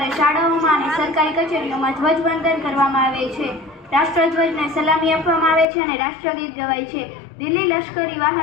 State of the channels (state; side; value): drops out; right; at 5.7 s